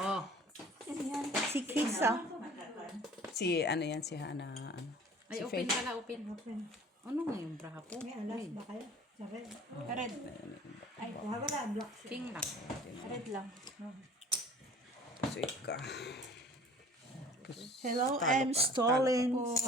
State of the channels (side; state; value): both; normal; correlation 0.48